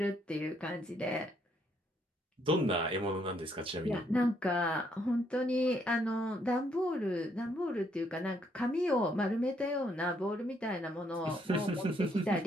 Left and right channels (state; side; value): normal; both; correlation 0.72